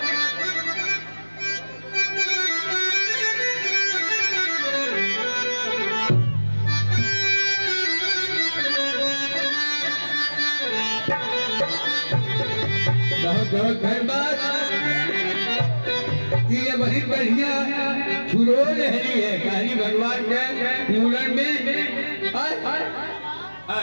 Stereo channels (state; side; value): inverted; both; correlation -1.00